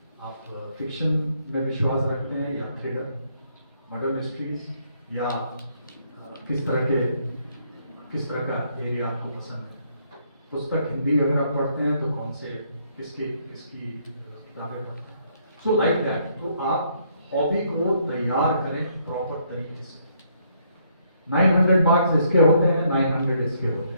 आप फिक्शन में विश्वास रखते हैं या थ्रिलर, मर्डर मिस्ट्रीज, या किस तरह का एरिया आपको पसंद है? पुस्तक हिंदी अगर आप पढ़ते हैं तो कौन से किसकी किताबें पढ़ते हैं? So like that. तो आप हॉबी को तैयार करें प्रॉपर तरीके से। 900 मार्क्स इसके होते हैं, 900 इसके होते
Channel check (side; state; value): both; inverted; correlation -0.70